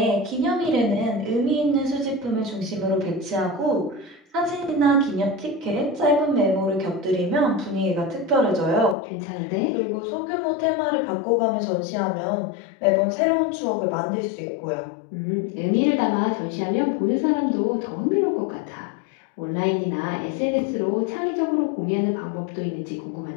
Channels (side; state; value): right; drops out; at 9.0 s